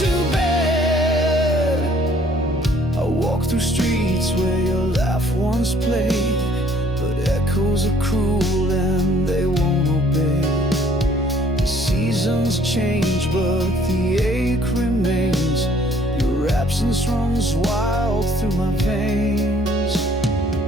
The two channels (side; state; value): both; normal; correlation 0.60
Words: to bed. I walk through streets where your laugh once played, but echoes are cruel and they won't obey. The seasons change, but the ache remains. Your absence runs wild through my veins.